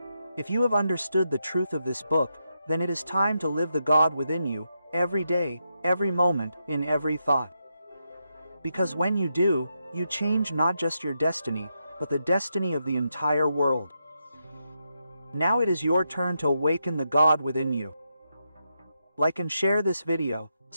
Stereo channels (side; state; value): both; inverted; correlation -0.84